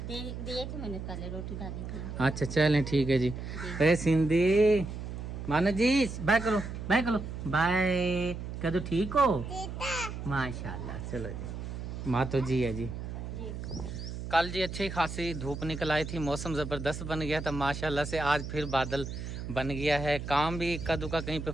दिए थे मैंने, पहले रोटी डाली थी। अच्छा चलें ठीक है जी। अरे सिंधी मानो जी बाय करो, बाय कह दो, ठीक हो माशाल्लाह। चलो जी, माँ तो जी है जी। कल जी अच्छी खासी धूप निकल आई थी, मौसम ज़बरदस्त बन गया था माशाल्लाह से। आज फिर बादल बन गया है, काम भी इक्का दुक्का कहीं पे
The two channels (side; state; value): right; noise; hum, 7 dB below the sound